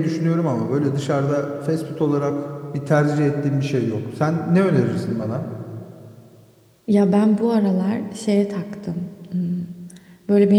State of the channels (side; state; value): both; identical; correlation 1.00